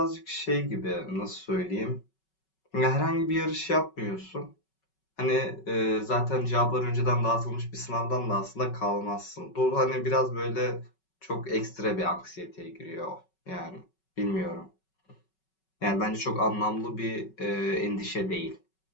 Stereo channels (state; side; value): late; right; 5.3 ms